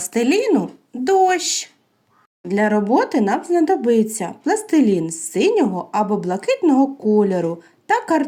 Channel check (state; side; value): identical; both; correlation 1.00